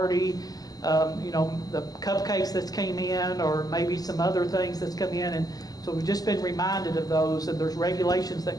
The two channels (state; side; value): late; right; 0.18 ms